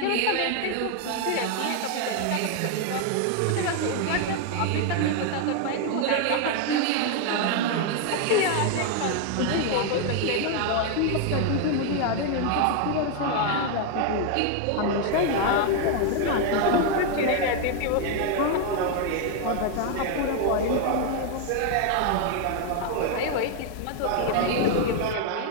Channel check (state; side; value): different; both; correlation 0.01